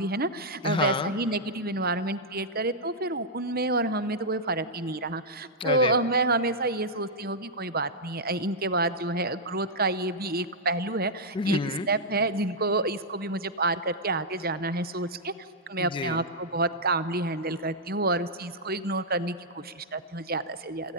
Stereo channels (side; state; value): both; normal; correlation -0.07